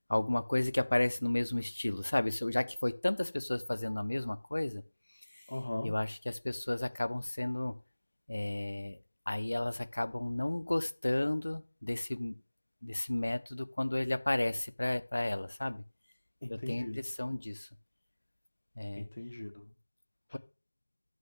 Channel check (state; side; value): inverted; both; correlation -1.00